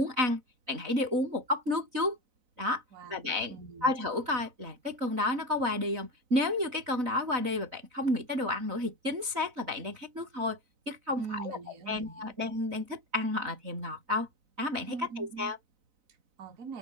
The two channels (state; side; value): late; left; 4.0 ms